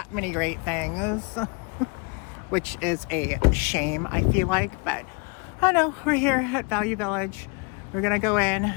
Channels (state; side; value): quieter; right; 32.9 dB